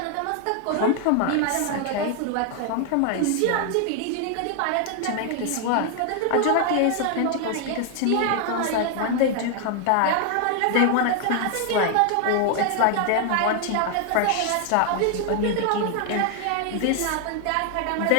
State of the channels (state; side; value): different; both; correlation 0.00